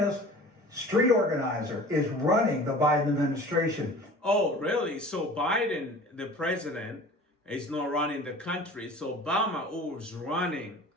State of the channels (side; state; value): both; normal; correlation 0.42